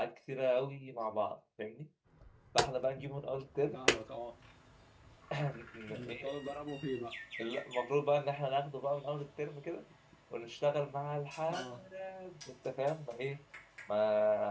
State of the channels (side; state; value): both; identical; correlation 1.00